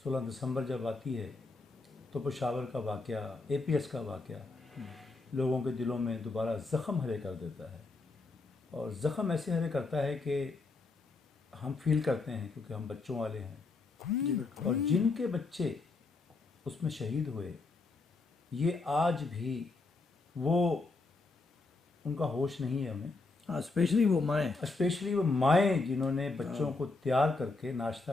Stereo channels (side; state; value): right; quieter; 3.6 dB